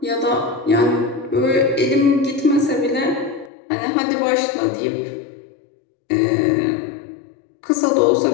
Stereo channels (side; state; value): right; drops out; at 3.5 s